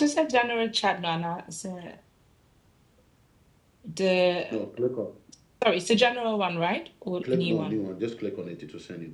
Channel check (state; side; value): identical; both; correlation 1.00